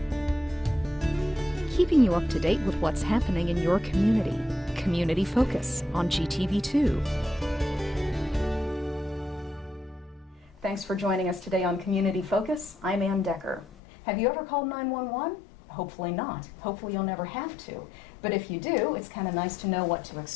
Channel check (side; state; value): right; drops out; at 13.8 s